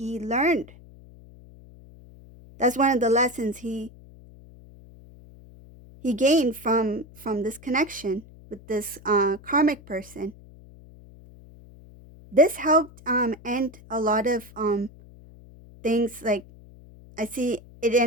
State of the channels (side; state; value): left; noise; hum, 21 dB below the sound